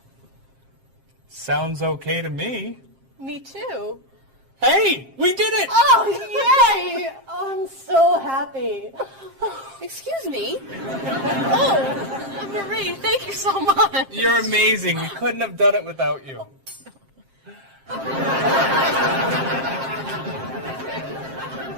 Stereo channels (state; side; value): late; left; 7.5 ms